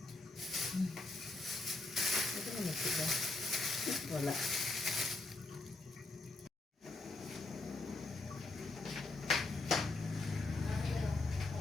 Ito na magsiga. Wala.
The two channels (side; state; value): right; quieter; 3.1 dB